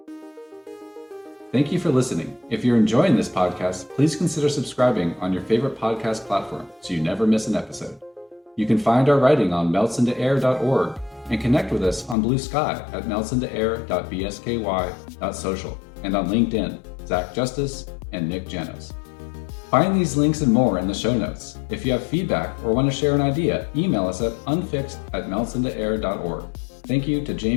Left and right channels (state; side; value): drops out; right; at 12.2 s